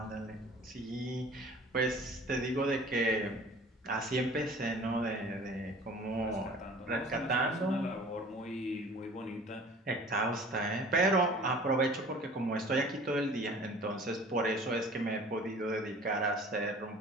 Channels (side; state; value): both; normal; correlation 0.46